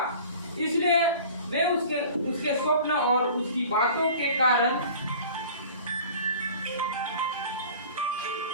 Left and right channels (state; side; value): inverted; both; correlation -0.43